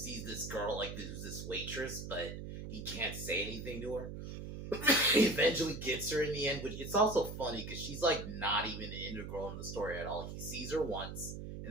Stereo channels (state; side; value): noise; right; hum, 8 dB below the sound